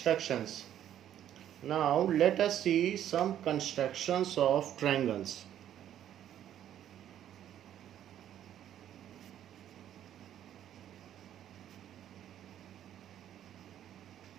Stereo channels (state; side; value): quieter; left; 10.9 dB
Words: Now let us see some constructions of triangles.